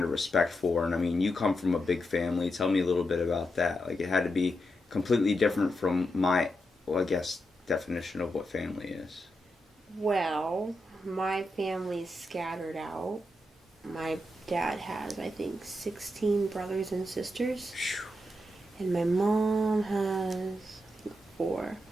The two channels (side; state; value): both; normal; correlation 0.85